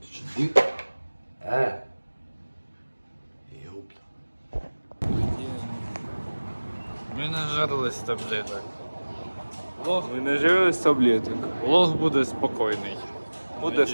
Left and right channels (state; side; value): inverted; both; correlation -1.00